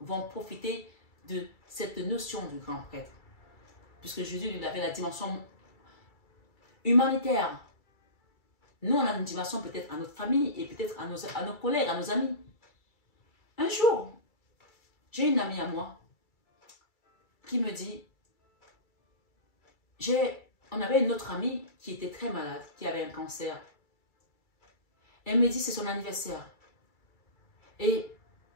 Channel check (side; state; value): right; late; 2.3 ms